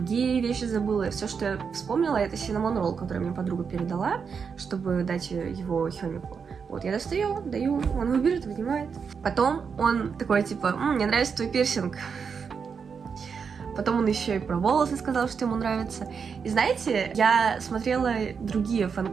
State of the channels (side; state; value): left; quieter; 6.1 dB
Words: вещи забыла. Все, что я вспомнила, это cinnamon roll, который мне подруга передала, чтобы дать его Хёмику. Вот, я достаю, даю, он его берет, вынимает. Потом он такой, типа, мне нравится твой пирсинг. Потом он еще и про волосы сказал, что ему нравится. И знаете, я смотрела другие